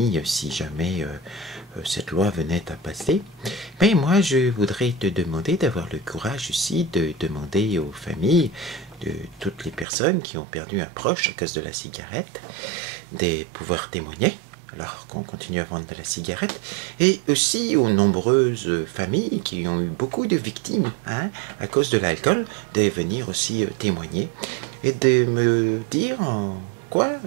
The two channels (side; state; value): left; drops out; at 9.9 s